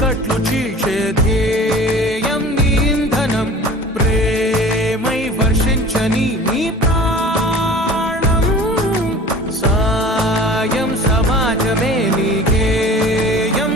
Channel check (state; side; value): normal; both; correlation 0.42